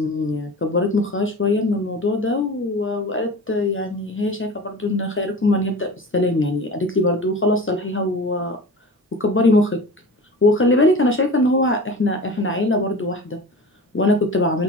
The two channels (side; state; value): both; normal; correlation 0.35